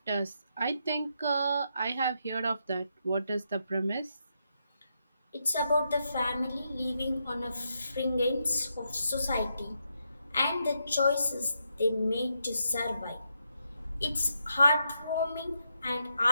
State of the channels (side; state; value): both; inverted; correlation -0.81